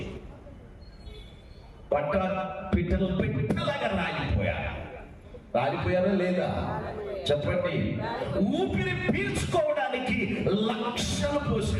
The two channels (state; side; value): identical; both; correlation 1.00